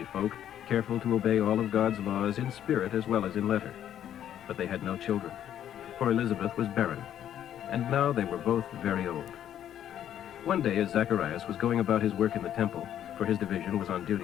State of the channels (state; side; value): quieter; right; 10.6 dB